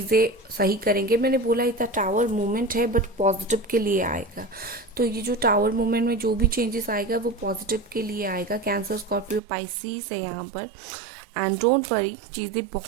सही करेंगे। मैंने बोला था टावर मूवमेंट है बट पॉजिटिव के लिए आएगा। तो ये जो टावर मूवमेंट में जो भी चेंजेस आएगा वो पॉजिटिव के लिए आएगा। कैंसर, स्कॉर्पियो, पाइसिस है यहाँ पर। एंड डोंट वरी, चीज़ें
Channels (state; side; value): drops out; left; at 9.4 s